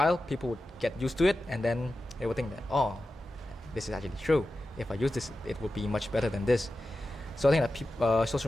people would get used to it, and then they would think that, oh, this is actually true. If I use this, it would be much better than this. So I think that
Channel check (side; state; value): both; normal; correlation 0.92